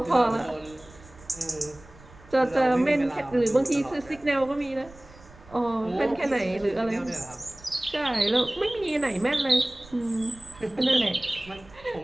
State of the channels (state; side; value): noise; right; rumble, 22 dB below the sound